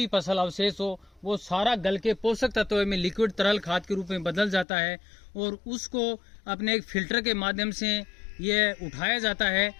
फसल अवशेष हो, वो सारा गल के पोषक तत्वों में लिक्विड तरल खाद के रूप में बदल जाता है और उसको अपने एक फिल्टर के माध्यम से ये उठाया जाता है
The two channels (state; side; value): drops out; right; at 4.7 s